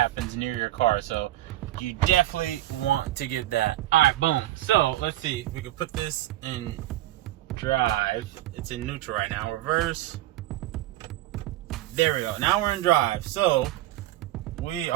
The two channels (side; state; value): left; quieter; 15.1 dB